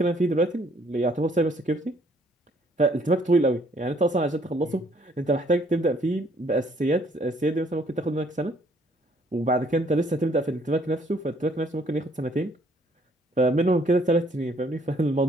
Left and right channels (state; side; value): normal; both; correlation 0.64